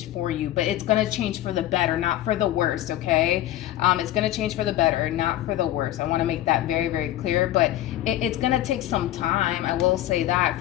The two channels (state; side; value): quieter; right; 13.7 dB